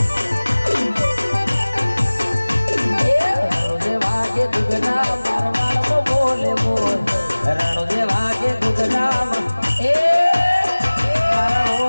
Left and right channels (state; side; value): inverted; both; correlation -1.00